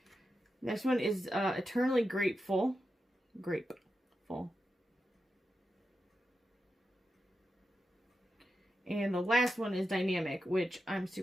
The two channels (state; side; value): normal; both; correlation 0.88